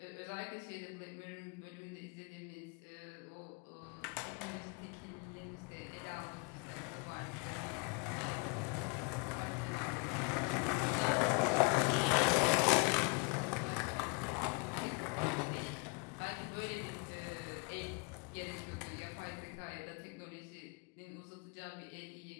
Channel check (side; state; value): right; quieter; 32.3 dB